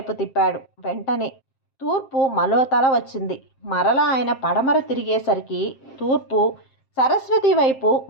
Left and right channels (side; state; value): right; late; 7.6 ms